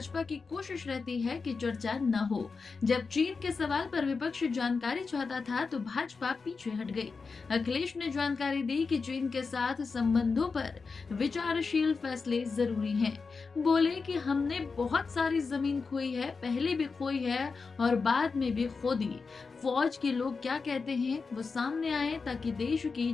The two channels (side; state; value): right; quieter; 4.7 dB